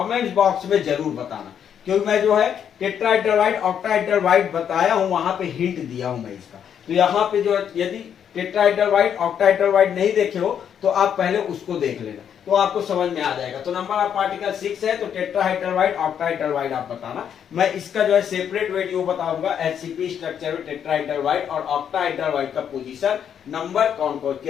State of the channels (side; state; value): right; quieter; 8.6 dB